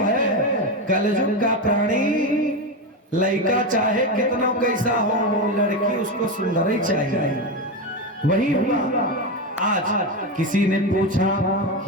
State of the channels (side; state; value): both; normal; correlation 0.15